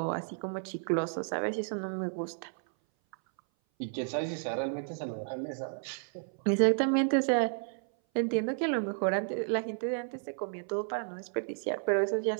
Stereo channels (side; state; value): left; silent; 56 dB below the other